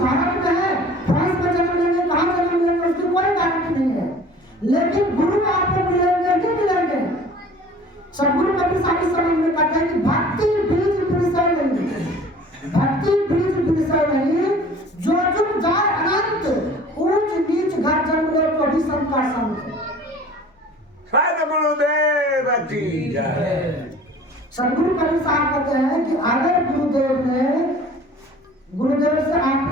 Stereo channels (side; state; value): both; normal; correlation 0.47